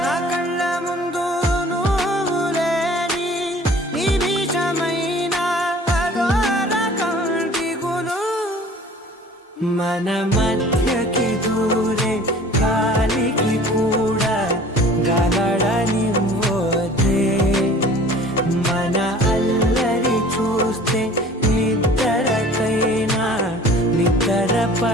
నా కళ్ళ ముందు నువ్వు లేని నిమిషమైన అదోర కంటిగులు, మన మధ్యకి దూరే గాలికి కూడా గలడనివ్వదే, మన అల్లరి చూస్తే నిద్రకైనా నిద్ర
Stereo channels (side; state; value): both; normal; correlation 0.48